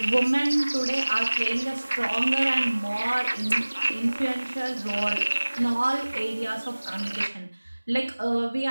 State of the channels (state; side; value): inverted; both; correlation -1.00